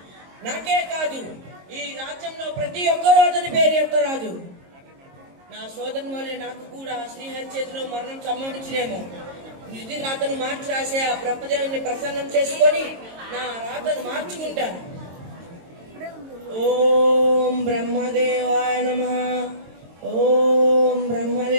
నాకే కాదు, ఈ రాజ్యంలో ప్రతి ఒక్కరూ అతని పేరు ఎత్తరాదు. నా సోదరుని వల్లే నాకు కూడా శ్రీహరి చేతిలో మరణం సంభవించినేమో. నిధి రాతను మార్చి రాసే ఆ బ్రహ్మదేవుని ప్రసన్నం చేసుకొని నా రాతను మార్చుకుంటాను. ఓం బ్రహ్మదేవాయ నమః, ఓం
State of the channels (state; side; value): late; left; 22 ms